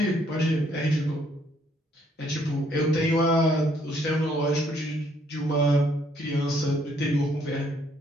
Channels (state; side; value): normal; both; correlation 0.68